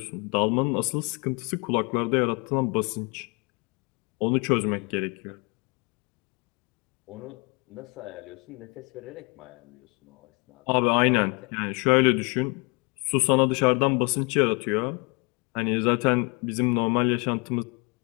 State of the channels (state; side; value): quieter; right; 31.1 dB